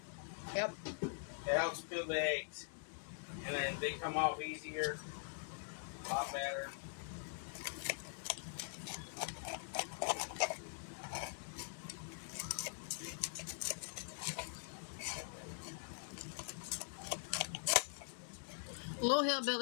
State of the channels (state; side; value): silent; right; digital silence